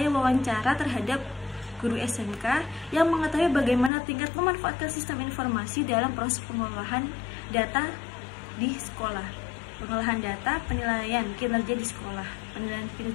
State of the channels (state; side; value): drops out; right; at 3.9 s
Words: wawancara terhadap guru SMK yang mengetahui bagaimana tingkat memanfaatkan sistem informasi dalam proses pengolahan data di sekolah. Pengolahan data, penilaian kinerja di sekolah, penilaian